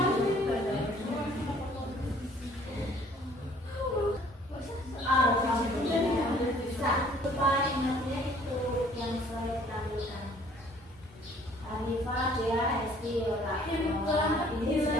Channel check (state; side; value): normal; both; correlation 0.57